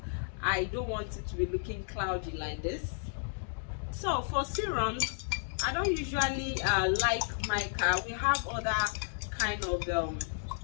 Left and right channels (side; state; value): right; silent; digital silence